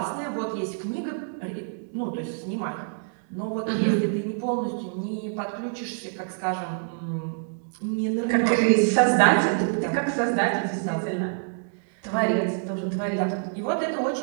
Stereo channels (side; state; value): left; silent; digital silence